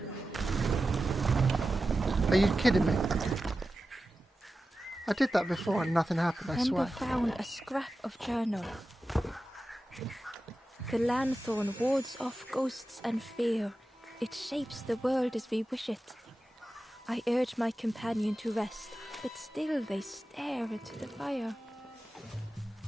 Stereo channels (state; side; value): normal; both; correlation 0.93